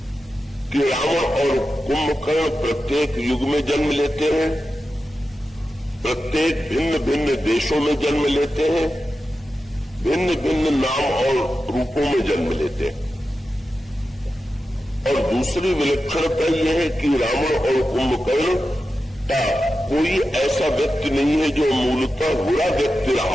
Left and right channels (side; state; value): both; normal; correlation 0.91